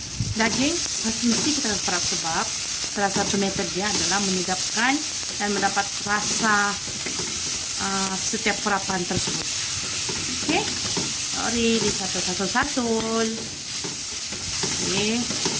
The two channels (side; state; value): both; identical; correlation 1.00